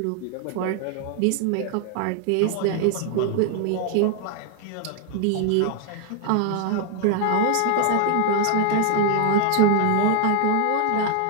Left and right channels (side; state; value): both; different; correlation 0.00